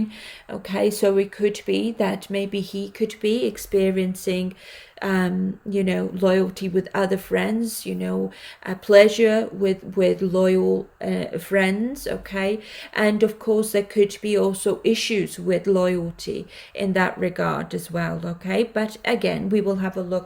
Okay, so it could be that maybe he could be experiencing loyalty with other friends, pleasure with loyal friends. Okay, and of course there could be also issues with loyalty in that regard as well. Okay, but again, we will have a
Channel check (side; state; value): both; identical; correlation 1.00